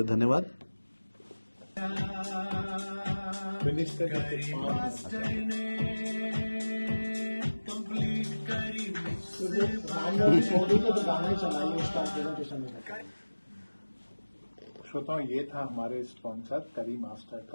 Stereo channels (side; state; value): both; inverted; correlation -1.00